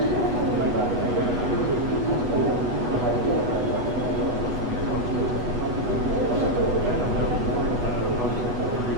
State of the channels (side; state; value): left; late; 8.2 ms